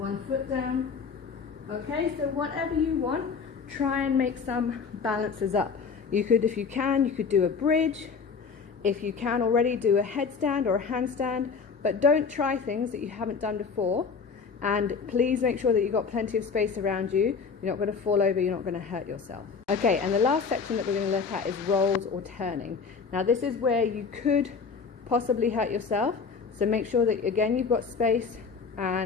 foot down. Okay, so whatever you want, try and make some balances up. You could, if you can, you could do a bridge. If you can already, do a headstand or a handstand, but don't try things that you haven't done before. And please make sure that you've got plenty of space around you. You're not going to fall over, you're not going to hurt yourself. Okay, and the last section that we're going to look at is rolls or turning. Now this is where you could possibly hurt yourself. So make sure that, again, you've got space,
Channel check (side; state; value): right; quieter; 5.4 dB